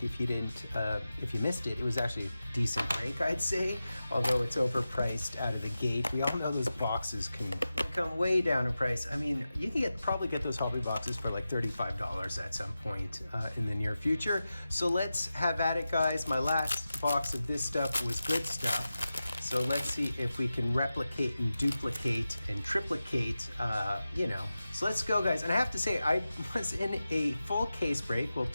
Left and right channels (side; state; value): both; inverted; correlation -0.93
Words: if you didn't, if you missed it. It was actually a decent break, I'd say, although it's overpriced out of the gate. We all know those boxes can come way down in price. I mean, you can probably get those hobby boxes for like $35 at some point in the near future. So let's have at it, guys. My last box of this stuff was good stuff. So let's see if we can replicate and duplicate and triplicate, So let's go, guys. And I have to say, I was in a full case break, well,